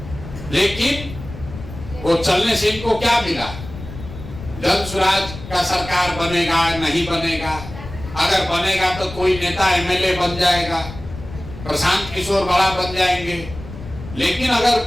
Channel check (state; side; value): noise; left; rumble, 13 dB below the sound